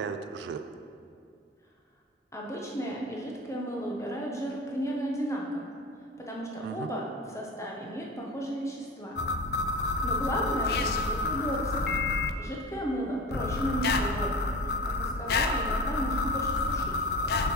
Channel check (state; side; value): normal; both; correlation 0.32